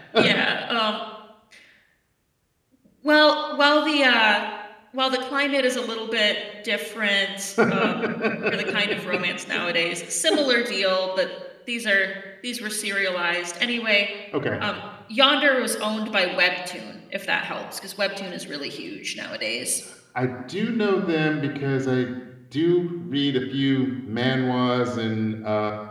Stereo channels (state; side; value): identical; both; correlation 1.00